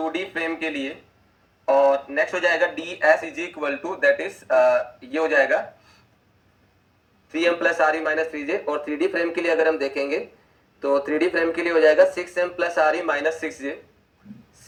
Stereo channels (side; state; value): both; identical; correlation 1.00